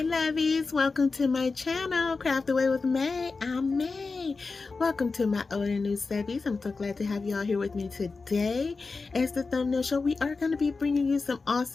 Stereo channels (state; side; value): quieter; right; 4.2 dB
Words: lovies, welcome to my channel, Craft Away with May. I'm May. Welcome to my old and new subbies. I'm so glad to have you all here with me today. As the thumbnail show, we are going to be bringing you some